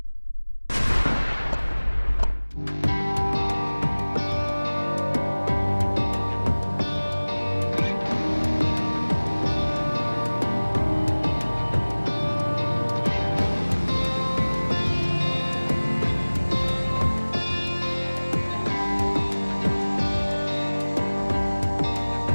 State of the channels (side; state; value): both; inverted; correlation -1.00